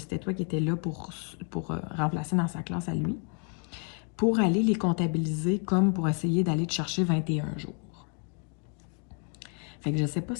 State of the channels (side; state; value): right; quieter; 39.9 dB